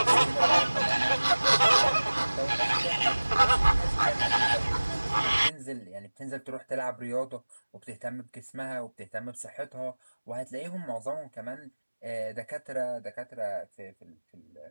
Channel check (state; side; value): inverted; both; correlation -1.00